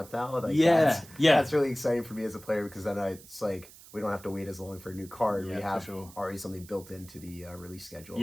now. Like, that's really exciting for me as a player, because then it's like we don't have to wait as long for a new card. Yeah, we have already something built into the release schedule.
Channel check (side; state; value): right; noise; hiss, 20 dB below the sound